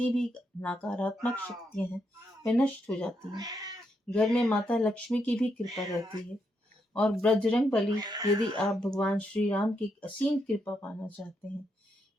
भी नकारात्मक शक्तियां हैं वे नष्ट हो जाती हैं। घर में माता लक्ष्मी की भी कृपा रहती है। और बजरंगबली, यदि आप भगवान श्री राम की असीम कृपा पाना चाहते हैं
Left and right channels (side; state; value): both; normal; correlation 0.80